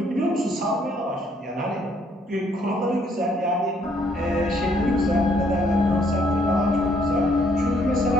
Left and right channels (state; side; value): normal; both; correlation 0.68